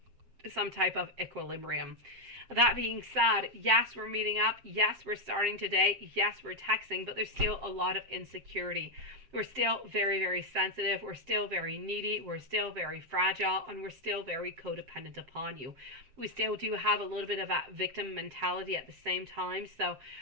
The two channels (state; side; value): late; left; 7.6 ms